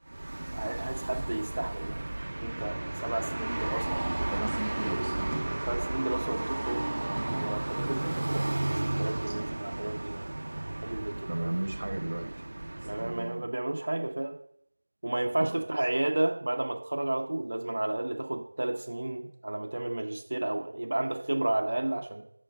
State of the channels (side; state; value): both; inverted; correlation -1.00